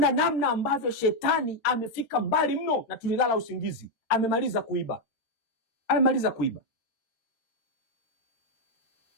namna ambavyo shetani amefika mbali mno, na tulilala usingizi. Amemaliza kuiba, amemaliza kuiba.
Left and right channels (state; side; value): late; right; 13 ms